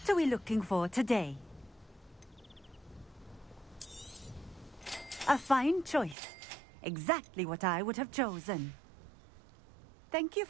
are we looking for today? A fine choice. Exactly what I would have chosen. Thank you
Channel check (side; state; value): left; drops out; at 6.2 s